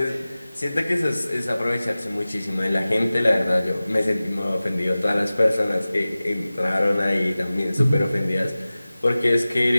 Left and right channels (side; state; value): both; inverted; correlation -0.97